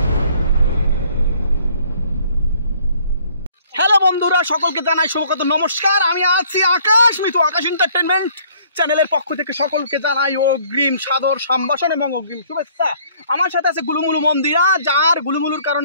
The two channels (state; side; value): inverted; both; correlation -0.59